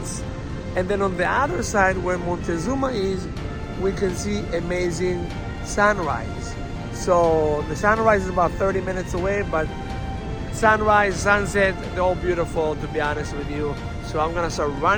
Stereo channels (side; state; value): both; identical; correlation 1.00